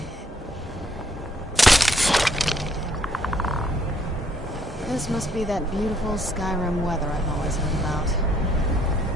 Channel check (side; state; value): both; normal; correlation 0.68